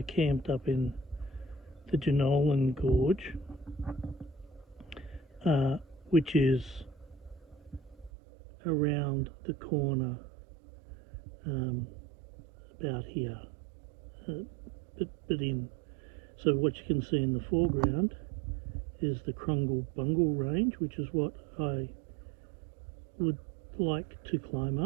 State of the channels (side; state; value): left; drops out; at 8.1 s